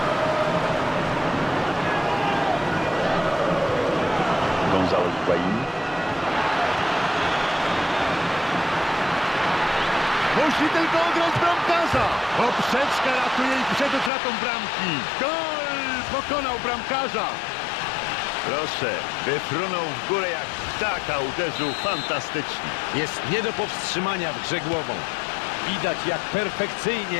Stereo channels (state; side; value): drops out; right; at 14.1 s